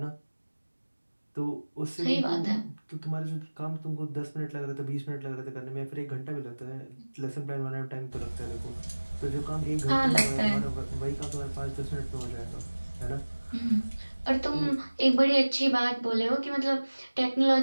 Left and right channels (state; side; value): inverted; both; correlation -1.00